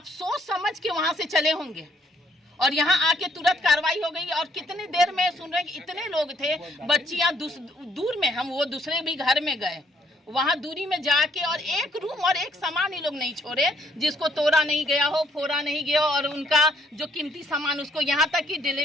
सोच समझ के वहां से चले होंगे और यहाँ आके तुरंत कार्रवाई हो गई। और कितनी देर में सुन रहे कि इतने लोग थे, बच्चियां दूर में, हम वो दूसरे भी घर में गए, वहां दूरी में जाके, और एक रूम और एक सामान ही लोग नहीं छोड़े जिसको तोड़ा नहीं गया हो, फोड़ा नहीं गया, और उनका जो कीमती सामान, उसको यहाँ तक कि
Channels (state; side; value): normal; both; correlation 0.68